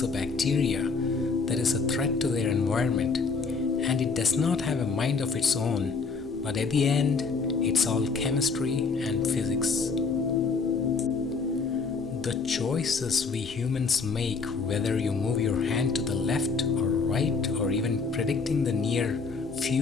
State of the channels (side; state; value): right; quieter; 4.7 dB